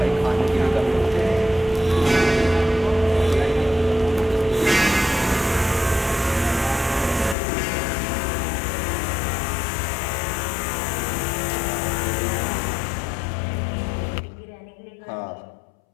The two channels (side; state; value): right; drops out; at 7.4 s